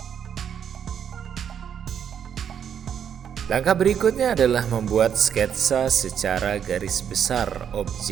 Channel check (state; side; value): quieter; left; 8.3 dB